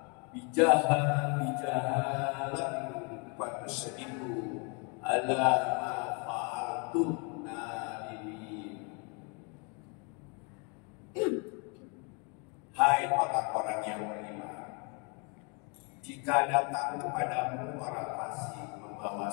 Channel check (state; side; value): quieter; right; 34.1 dB